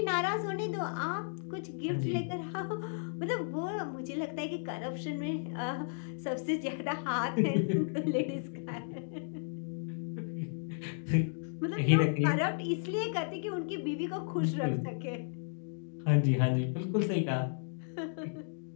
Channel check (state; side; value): silent; right; digital silence